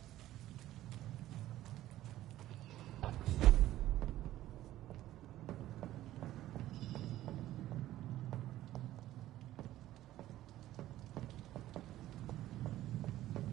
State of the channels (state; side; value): quieter; left; 14.3 dB